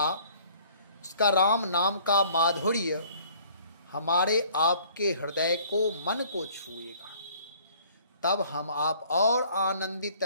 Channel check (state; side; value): inverted; both; correlation -0.56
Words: उसका राम नाम का माधुर्य हमारे आपके हृदय को, मन को छुएगा। तब हम आप और आनंदित